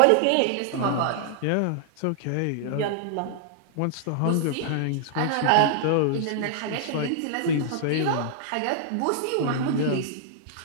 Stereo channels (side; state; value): both; different; correlation -0.01